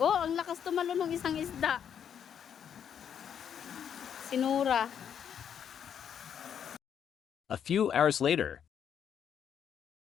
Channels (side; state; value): right; quieter; 8.4 dB